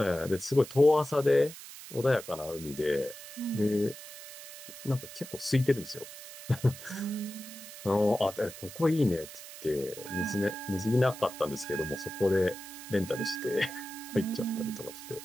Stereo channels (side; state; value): right; noise; hiss, 14 dB below the sound